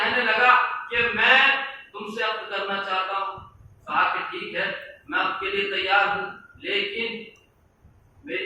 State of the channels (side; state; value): both; identical; correlation 1.00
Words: لگا کہ میں تم سے عقد کرنا چاہتا ہوں۔ کہا کہ ٹھیک ہے، میں آپ کے لیے تیار ہوں، لیکن